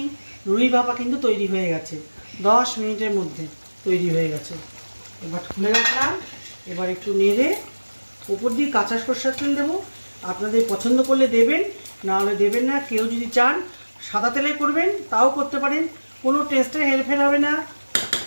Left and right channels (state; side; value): inverted; both; correlation -1.00